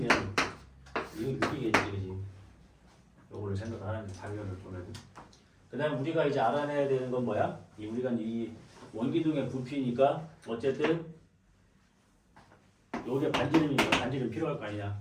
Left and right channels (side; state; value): both; identical; correlation 1.00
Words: 이거 6이겠지. 그지? 요거를 생각하는 장면을 보면. 그 다음에 우리가 이제 알아내야 되는 건 뭐야? 우리가 이 원기둥의 부피니까 어쨌든 요게 반지름이니까 반지름 필요할 거 아니냐.